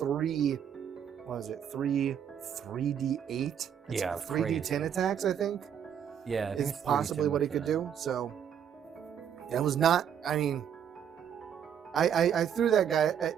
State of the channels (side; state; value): left; quieter; 8.7 dB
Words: what is it? 3d8. Yeah, 3d10 attacks, I think. Yeah, is possibly what he could do. So that was not. I mean. I threw that guy.